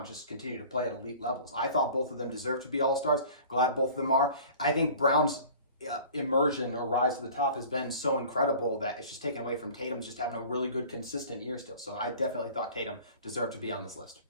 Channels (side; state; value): both; inverted; correlation -0.44